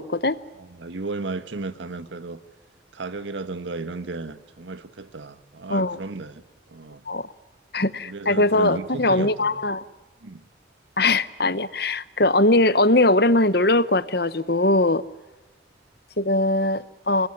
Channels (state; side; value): normal; both; correlation -0.06